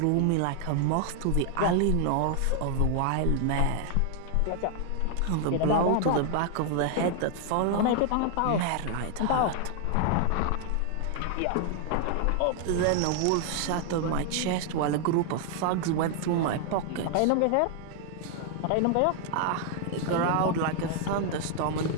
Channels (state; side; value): different; both; correlation 0.00